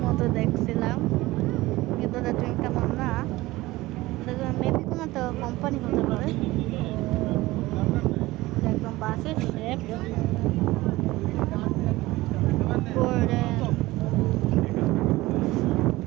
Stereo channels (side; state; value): left; quieter; 18.9 dB